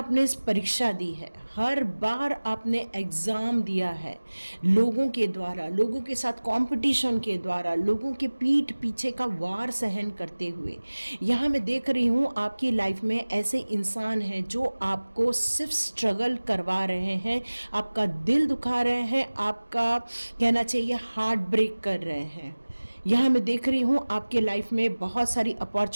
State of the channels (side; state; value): both; inverted; correlation -1.00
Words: इस परीक्षा दी है, हर बार आपने एग्ज़ाम दिया है, लोगों के द्वारा, लोगों के साथ कंपटीशन के द्वारा, लोगों के पीठ पीछे का वार सहन करते हुए। यहाँ मैं देख रही हूँ आपकी लाइफ में ऐसे इंसान हैं जो आपको सिर्फ स्ट्रगल करवा रहे हैं, आपका दिल दुखा रहे हैं, आपका कहना चाहिए हार्ट ब्रेक कर रहे हैं। यहाँ मैं देख रही हूँ आपके लाइफ में बहुत सारी